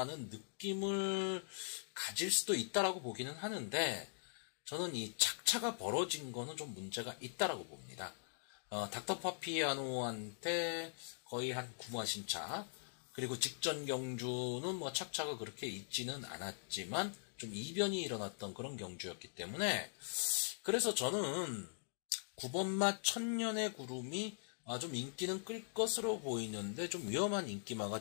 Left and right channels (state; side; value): silent; right; digital silence